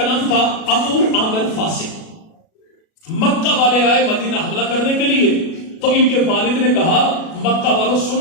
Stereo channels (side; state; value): right; late; 37 ms